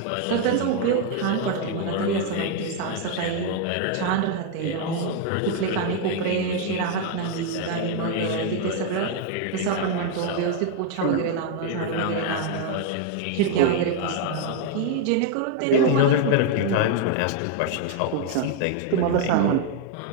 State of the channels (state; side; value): different; both; correlation 0.01